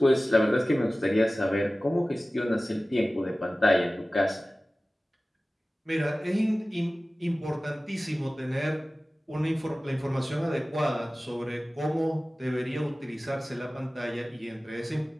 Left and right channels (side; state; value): both; normal; correlation 0.97